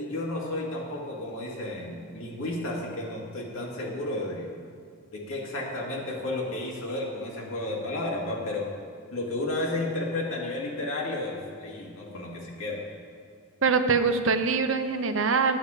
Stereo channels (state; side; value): normal; both; correlation 0.01